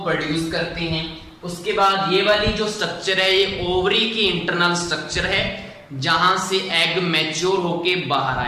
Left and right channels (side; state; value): both; identical; correlation 1.00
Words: प्रोड्यूस करते हैं। उसके बाद ये वाली जो स्ट्रक्चर है ये ओवरी की इंटरनल स्ट्रक्चर है जहां से एग मैच्योर होके बाहर